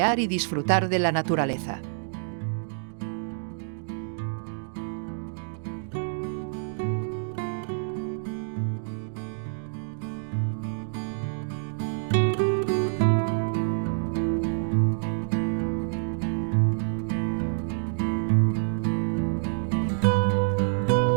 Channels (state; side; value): silent; left; digital silence